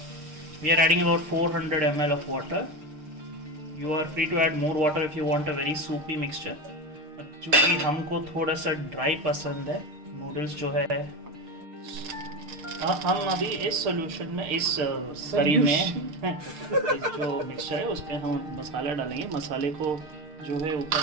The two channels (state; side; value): late; left; 6.6 ms